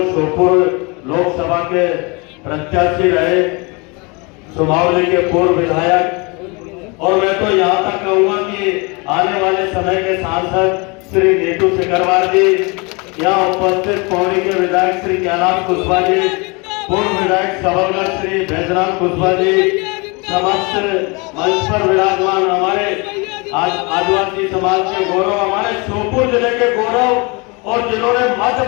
श्योपुर लोकसभा के प्रत्याशी रहे सुमावली के पूर्व विधायक, और मैं तो यहाँ तक कहूंगा कि आने वाले समय के सांसद श्री नीतू सिकरवार जी, यहाँ उपस्थित पौड़ी के विधायक श्री कैलाश कुशवाहा जी, पूर्व विधायक सबलगढ़ श्री बैजनाथ कुशवाहा जी, समस्त मंच पर विराजमान हमारे आदिवासी समाज के गौरव, हमारे श्योपुर जिले के गौरव, और जिन्होंने मध्य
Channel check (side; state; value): right; quieter; 29.0 dB